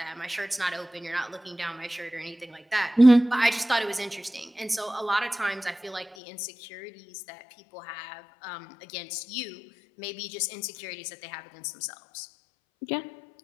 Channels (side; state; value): right; drops out; at 6.2 s